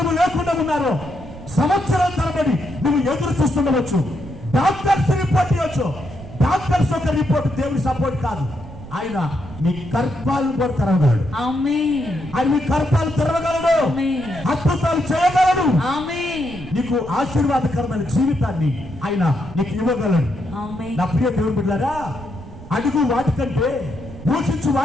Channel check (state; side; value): noise; right; rumble, 15 dB below the sound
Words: లేకుండా ఉన్నారో, సంవత్సరాల తరబడి నువ్వు ఎదురు చూస్తుండవచ్చు. డాక్టర్స్ రిపోర్ట్ ఇవ్వచ్చు. డాక్టర్స్ ఒక రిపోర్ట్ దేవుని సపోర్ట్ కాదు. ఆయన నీ గర్భాలను కూడా తెరవగలడు. ఆయన మీ గర్భాలు తెరవగలడు, అద్భుతాలు చేయగలడు. నీకు ఆశీర్వాదకరమైన జీవితాన్ని ఆయన నీకు ఇవ్వగలడు. నా ప్రియ దేవుని బిడ్డలారా, అడుగు వాటికంటే, యోచించు